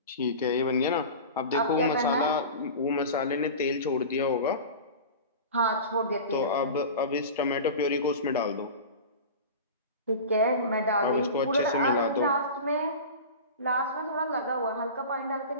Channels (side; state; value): both; inverted; correlation -0.32